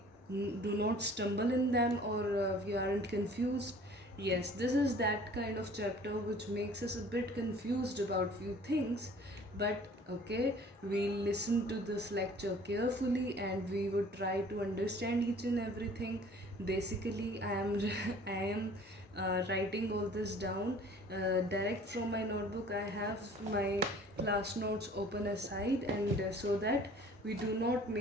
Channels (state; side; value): normal; both; correlation 0.50